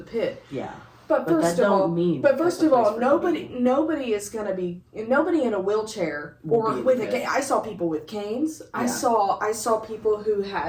pit. Yeah. But first of all, nobody is going to be nobody in a wheelchair or with a cane. I saw people with canes. Yeah. I saw people who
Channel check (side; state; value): both; identical; correlation 1.00